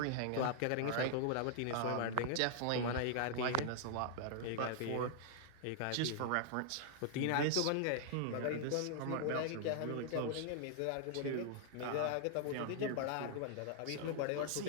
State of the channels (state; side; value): different; both; correlation -0.01